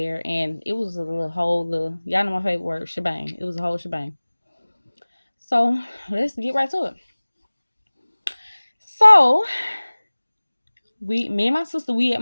and it was a whole y'all know my favorite word, shebang. It was a whole shebang. So let's get right to it. So me and my sister, we at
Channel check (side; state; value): both; inverted; correlation -1.00